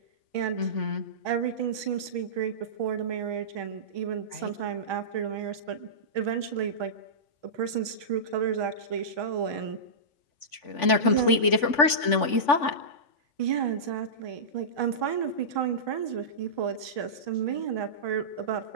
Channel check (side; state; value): right; late; 3.5 ms